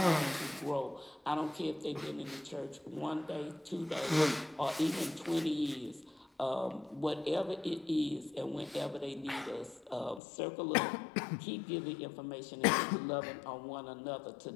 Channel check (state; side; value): drops out; right; at 10.2 s